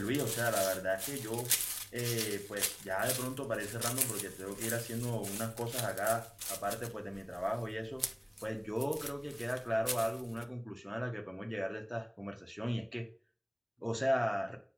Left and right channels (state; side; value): identical; both; correlation 1.00